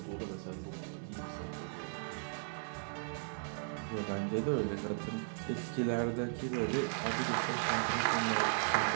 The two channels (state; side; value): silent; left; digital silence